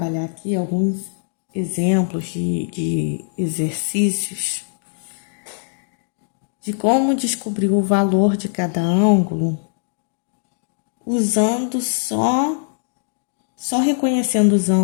aqui alguns exemplos de exercícios de como descobrir o valor de cada ângulo usando só reconhecendo os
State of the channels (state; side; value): silent; right; digital silence